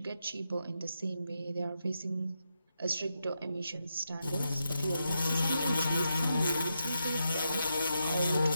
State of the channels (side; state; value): both; inverted; correlation -0.85